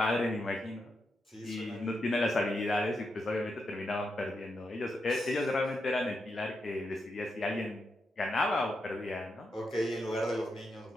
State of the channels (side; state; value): both; normal; correlation 0.85